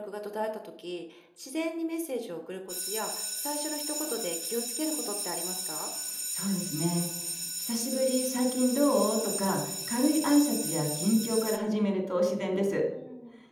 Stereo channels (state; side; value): identical; both; correlation 1.00